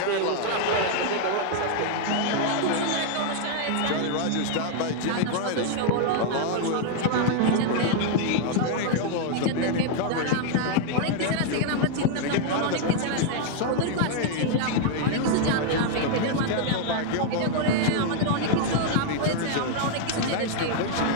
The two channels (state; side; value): different; both; correlation 0.00